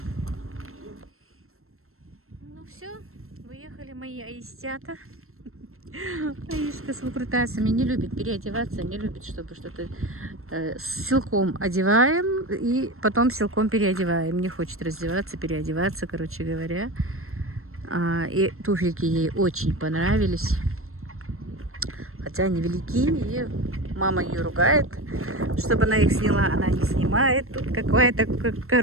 Ну все, выехали мои аистята. Аишка с выкрутасами не любит переодеваться, не любит, чтобы что-то силком одеваем и потом силком переодеваем. Не хочет раздеваться, переодеваться, короче говоря. И туфельки ей очень понравились. хотя они велики, и мама ее ругает, чтобы она их сняла. Она не снимает. Тут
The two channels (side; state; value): left; late; 0.62 ms